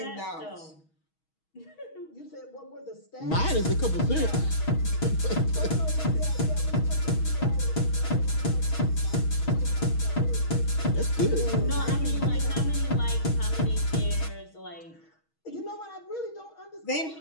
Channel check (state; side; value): late; right; 6.3 ms